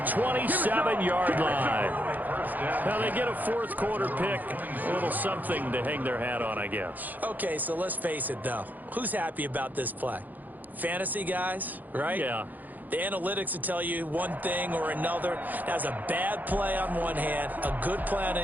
27-yard line. Now they get a 4th quarter pick. A little something to hang their hat on, I guess. Okay, so let's face it, though. Who's happy about this play? Fantasy guys, right? Yeah. The analytics will tell you one thing or another. That's a bad play on one hand, a good play on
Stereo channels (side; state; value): left; late; 0.083 ms